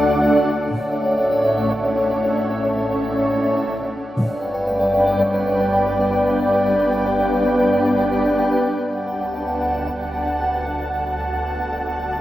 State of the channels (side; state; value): both; normal; correlation 0.91